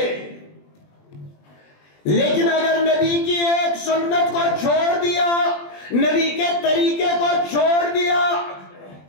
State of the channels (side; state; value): right; late; 20 ms